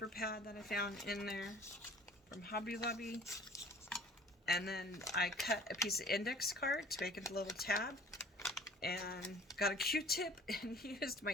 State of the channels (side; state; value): both; normal; correlation 0.49